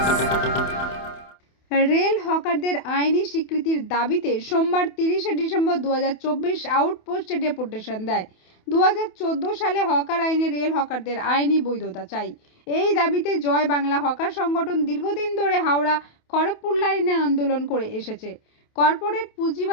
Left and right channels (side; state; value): right; late; 28 ms